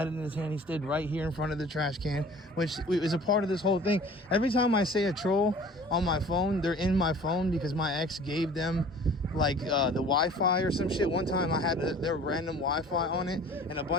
it in his hand. He stood right here in front of the trash can, which is a part of this whole thing. Every time I say a troll on my phone, they're in my phone because my ex gave them like the Wi-Fi or some shit. One time I had their random Wi-Fi on it, and a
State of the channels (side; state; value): both; normal; correlation 0.47